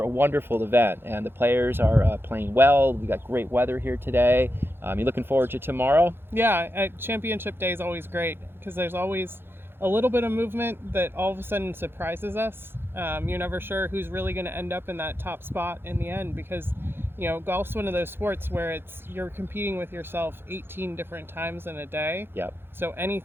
a wonderful event, and the players are playing well. We got great weather here today. You looking forward to tomorrow? Yeah. Championship Day is always great because there's always a little bit of movement that all of a sudden surprises us. You're never sure who's really going to end up in that top spot in the end, because golf's one of those sports where you're competing with yourself 18 different times in a day. Yep. So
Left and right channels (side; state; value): left; late; 0.11 ms